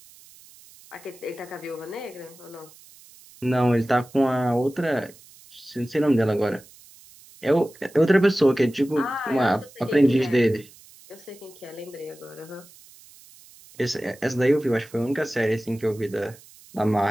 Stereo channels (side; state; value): right; noise; hiss, 23 dB below the sound